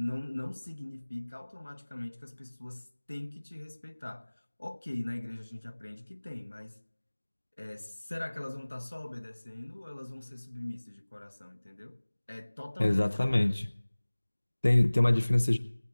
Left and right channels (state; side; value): inverted; both; correlation -1.00